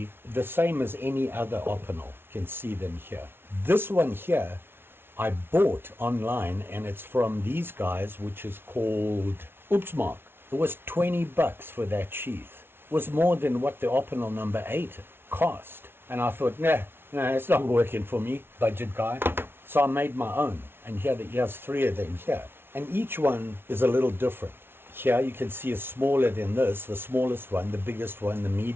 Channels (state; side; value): late; left; 0.11 ms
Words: the same as any other Opinel. You can see them here. This one here, I bought online, and it's from these guys, which is called Oopsmark. It was $20 for that sheath. It was more than what the Opinel number 8 cost. And I thought, nah, it's not working for me, budget guy. So I made my own, and here's 3 of them here. And each one is a little different. Here you can see is smaller than this, the smallest one, the biggest one, the